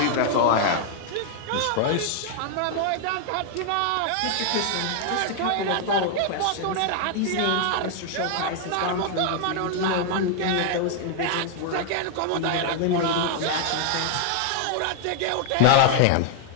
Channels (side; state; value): both; different; correlation 0.00